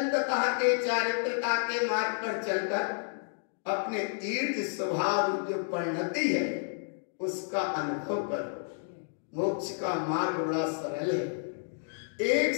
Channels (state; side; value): silent; right; digital silence